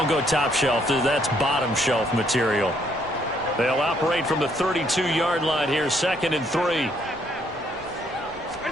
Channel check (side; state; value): both; normal; correlation 0.69